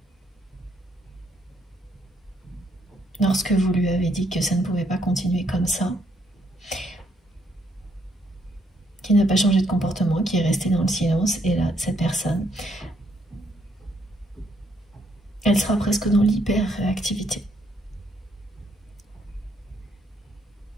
lorsque vous lui avez dit que ça ne pouvait pas continuer comme ça, qui n'a pas changé de comportement, qui est resté dans le silence. Et là, cette personne, elle sera presque dans l'hyper-réactivité.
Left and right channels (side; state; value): both; normal; correlation 0.72